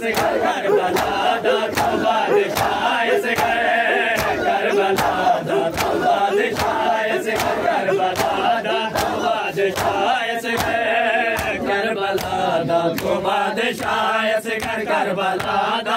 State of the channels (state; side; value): identical; both; correlation 1.00